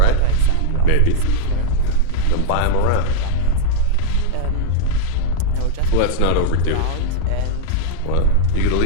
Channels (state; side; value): different; both; correlation -0.01